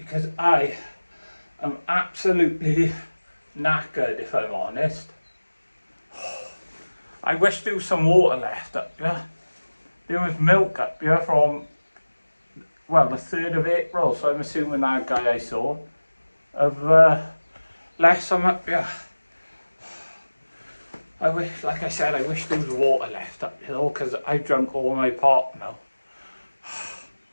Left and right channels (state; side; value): inverted; both; correlation -1.00